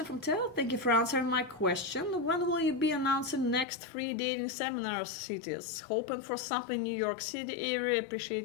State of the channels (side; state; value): right; drops out; at 3.7 s